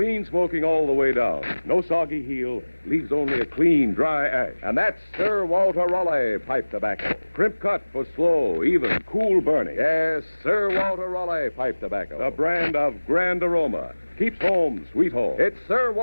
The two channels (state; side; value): inverted; both; correlation -1.00